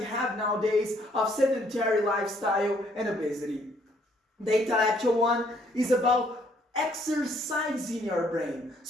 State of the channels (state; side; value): normal; both; correlation 0.66